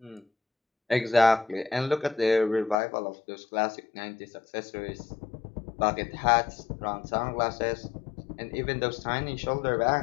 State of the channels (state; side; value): drops out; right; at 2.8 s